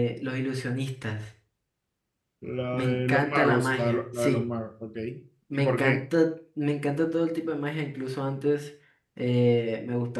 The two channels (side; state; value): both; identical; correlation 1.00